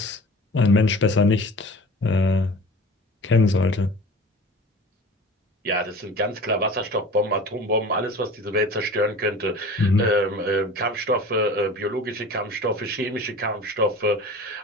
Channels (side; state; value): both; normal; correlation 0.40